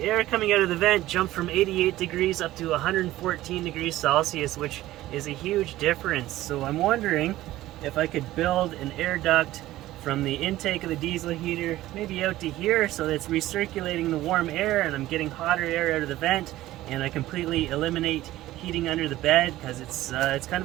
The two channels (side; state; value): left; quieter; 15.6 dB